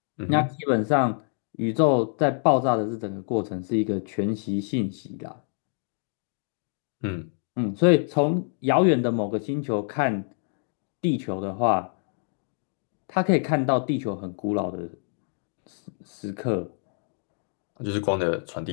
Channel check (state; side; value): silent; right; 57 dB below the other